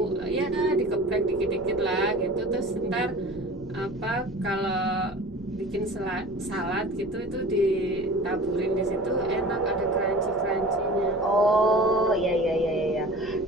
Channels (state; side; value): noise; right; rumble, 23 dB below the sound